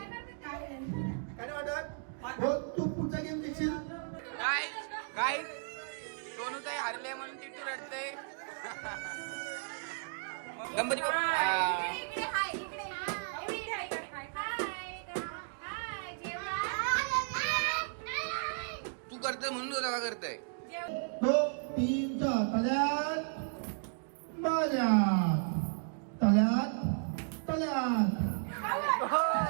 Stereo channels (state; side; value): silent; left; digital silence